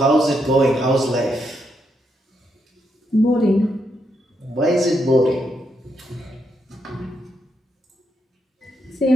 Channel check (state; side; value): normal; both; correlation 0.80